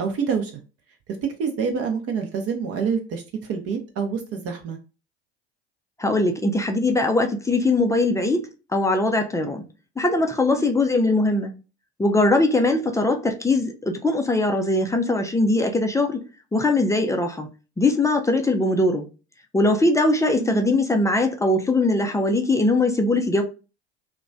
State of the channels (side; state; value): both; normal; correlation 0.58